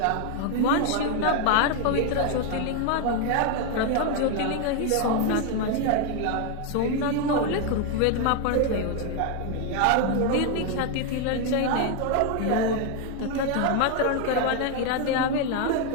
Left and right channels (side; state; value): both; different; correlation 0.01